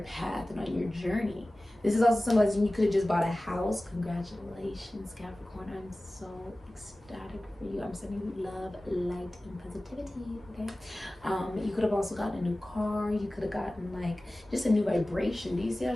path and on your journey. This is also symbolizing you could have just bought a house. Congratulations, Capricorn. I'm so ecstatic for you. I'm sending you love, light, and positivity, okay? You could have also gotten a new car. You could have gotten like just a new vibration. Do you see how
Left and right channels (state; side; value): normal; both; correlation 0.97